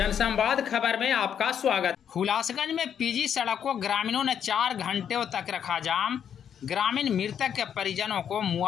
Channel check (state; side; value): quieter; right; 8.5 dB